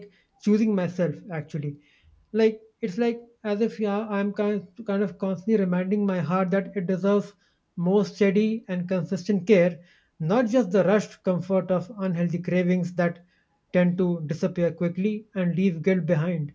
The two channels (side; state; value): both; identical; correlation 1.00